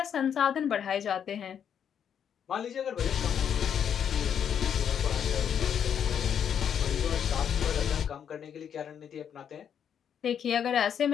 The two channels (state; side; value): quieter; right; 8.4 dB